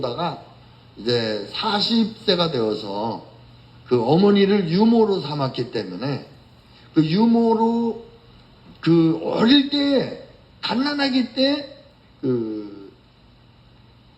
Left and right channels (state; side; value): identical; both; correlation 1.00